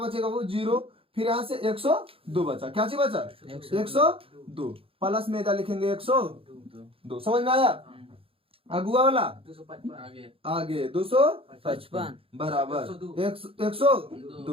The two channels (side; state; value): left; late; 0.27 ms